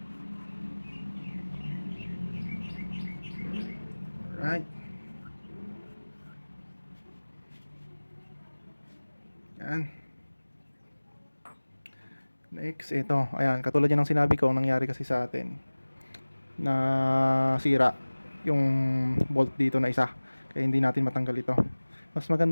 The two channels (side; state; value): both; inverted; correlation -1.00